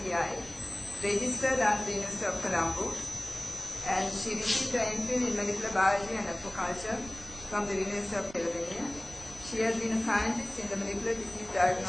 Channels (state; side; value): noise; right; rumble, 18 dB below the sound